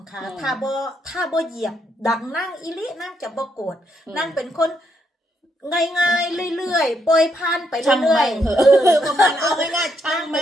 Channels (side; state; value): both; normal; correlation 0.76